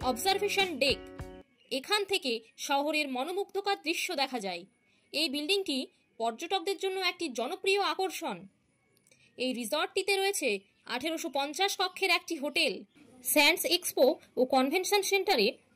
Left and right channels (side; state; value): both; identical; correlation 1.00